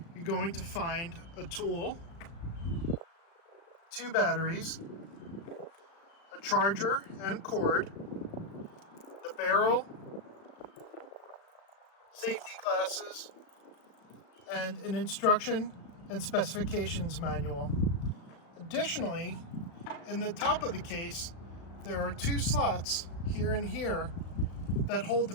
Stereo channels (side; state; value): right; late; 36 ms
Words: you're going to find a tool, 2 batteries, a charger and cord, the barrel, safety glasses, and an instruction and specifications manual. Additionally, in the top of the case, there are 2 slots here and here that hold the